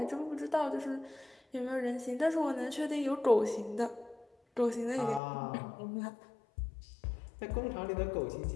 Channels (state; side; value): drops out; right; at 5.2 s